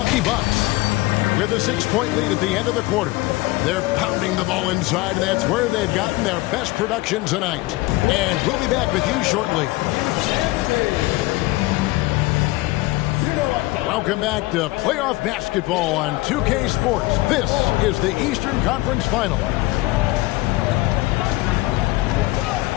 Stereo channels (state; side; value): quieter; right; 20.5 dB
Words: Bucks with a 6-point lead at the end of the quarter. They're pounding the ball inside, and that's where they've gotten their best production tonight. And we'll be back with you shortly. Welcome back to playoff basketball on 2K Sports. This is the Eastern Conference Final.